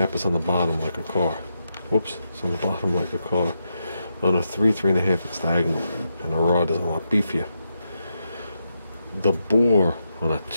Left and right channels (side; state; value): both; inverted; correlation -0.84